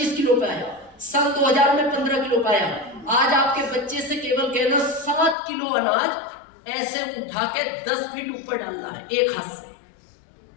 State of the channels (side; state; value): right; drops out; at 5.4 s